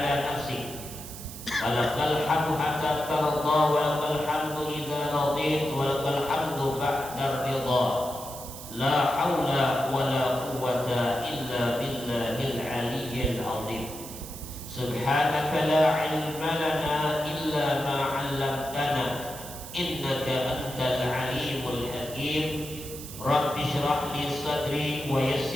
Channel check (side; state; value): right; noise; hiss, 12 dB below the sound